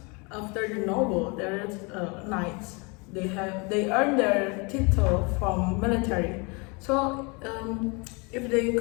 after the noble there is knights. They earn their title from military. So if they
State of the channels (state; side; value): quieter; right; 30.4 dB